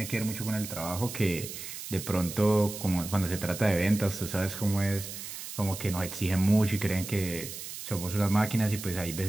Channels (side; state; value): right; noise; hiss, 9 dB below the sound